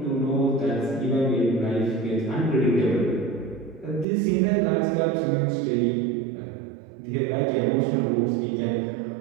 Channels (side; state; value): left; drops out; at 4.0 s